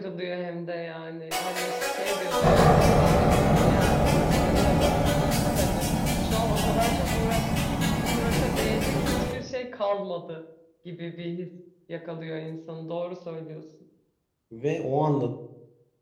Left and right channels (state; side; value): identical; both; correlation 1.00